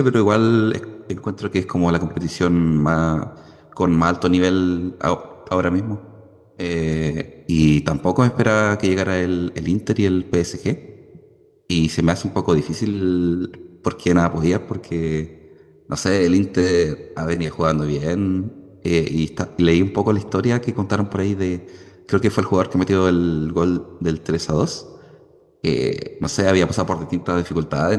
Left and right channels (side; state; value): both; identical; correlation 1.00